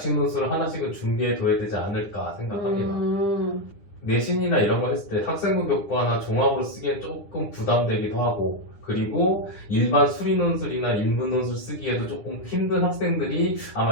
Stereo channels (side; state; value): right; late; 9.8 ms